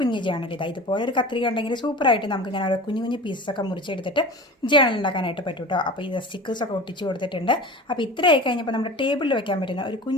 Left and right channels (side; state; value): both; normal; correlation 0.35